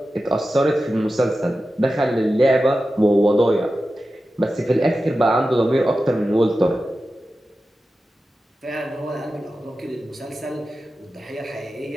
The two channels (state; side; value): normal; both; correlation 0.93